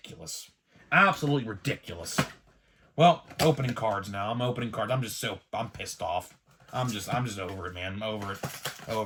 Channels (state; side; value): identical; both; correlation 1.00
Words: Absolutely ridiculous. Well, opening cards now. I'm opening cards. I'm pissed off. I'm just over it, man. I'm over it.